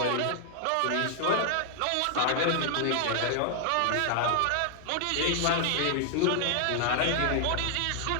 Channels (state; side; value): different; both; correlation 0.00